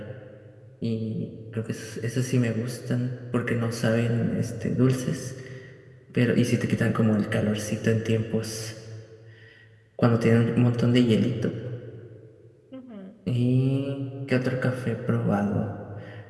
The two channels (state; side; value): identical; both; correlation 1.00